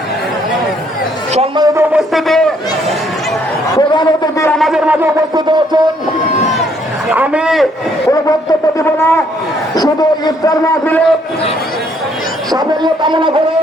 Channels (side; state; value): both; normal; correlation 0.68